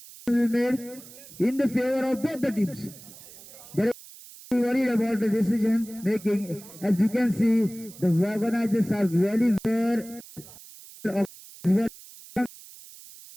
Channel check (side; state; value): right; noise; hiss, 19 dB below the sound